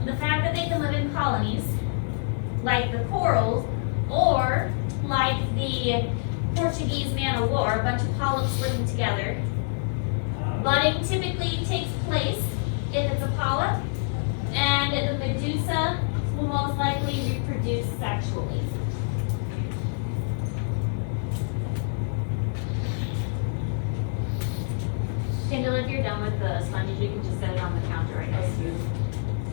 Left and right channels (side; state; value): right; silent; digital silence